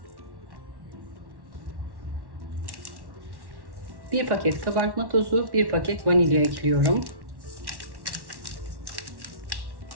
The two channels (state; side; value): late; left; 1.1 ms